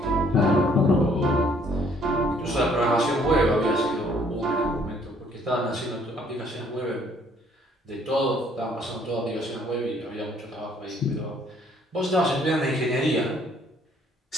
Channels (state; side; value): normal; both; correlation 0.62